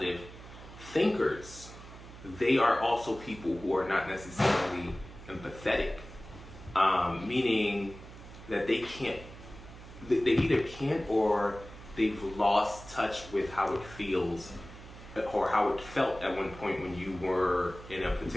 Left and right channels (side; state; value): right; noise; hum, 16 dB below the sound